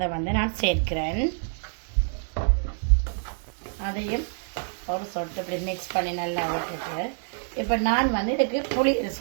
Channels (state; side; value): silent; left; 60 dB below the other